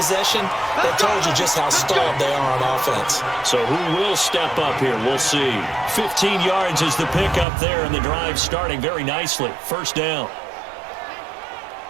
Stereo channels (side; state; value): left; drops out; at 7.5 s